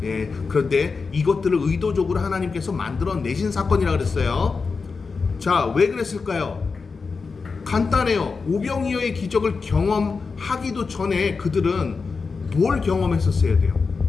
예, 그런데 이것들을 의도적으로 하나님께서 만들어내신 사건이라고 그랬어요. 자, 왜 그랬을까요? 간단해요. 오병이어의 기적을 경험하기도 전에 그들은 뭘 경험했었어야 돼요?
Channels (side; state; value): right; quieter; 4.7 dB